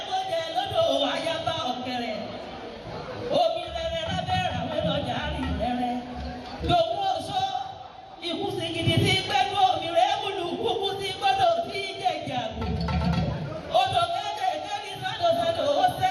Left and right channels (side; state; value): both; identical; correlation 1.00